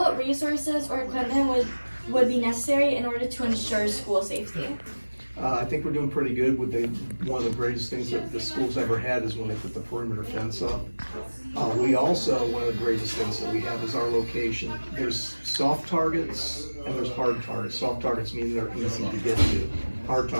resources or equipment would be necessary in order to ensure school safety? I think we're doing pretty good with one of the greatest things that the school's ever had is when they put the perimeter fence up. We also, one of the greatest things that we have is our location. There's soft targets and there's hard targets. Soft targets mean they're easy to get to. Hard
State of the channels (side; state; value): both; inverted; correlation -1.00